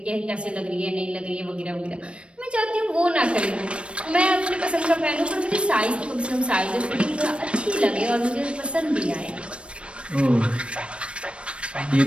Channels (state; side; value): late; left; 0.059 ms